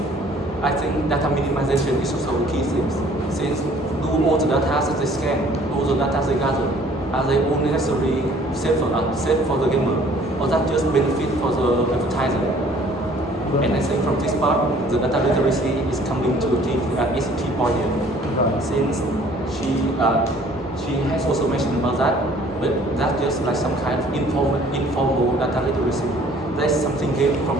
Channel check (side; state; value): both; normal; correlation 0.55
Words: I think data minimization is also a key thing. Since do all the data that they scan, all the data they gather, are they all necessarily safe for the gamer, or that just benefit for the advertiser? And I think from this part, the data literacy is coming to is a key point here. Right. Since she has also mentioned about that, but that's just like some kind of informal data literacy. That's something gained